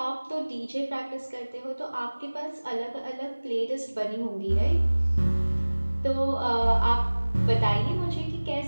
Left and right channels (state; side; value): inverted; both; correlation -1.00